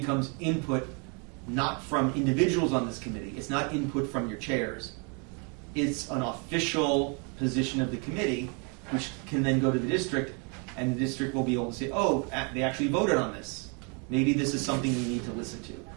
input not from individuals on this committee. It's not input from your chairs. It's an official position of the committee, which can then go to the district, and the district will be able to say, oh, they actually voted on this. Maybe this is something we need to listen to,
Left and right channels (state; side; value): quieter; left; 34.9 dB